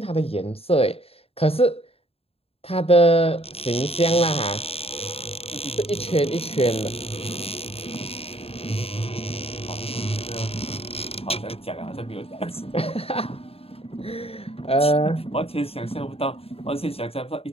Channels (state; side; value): late; right; 0.28 ms